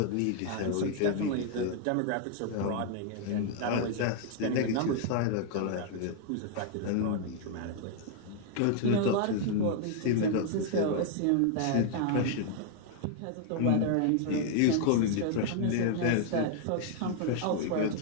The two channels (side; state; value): both; different; correlation 0.00